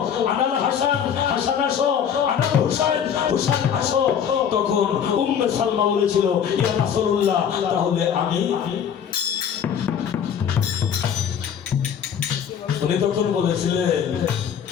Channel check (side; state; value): right; quieter; 8.1 dB